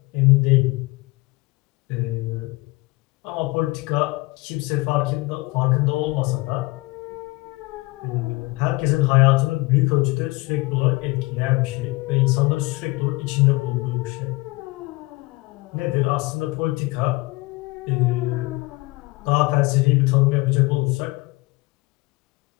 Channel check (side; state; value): right; quieter; 23.3 dB